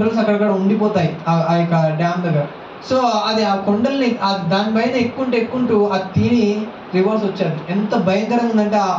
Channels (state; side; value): identical; both; correlation 1.00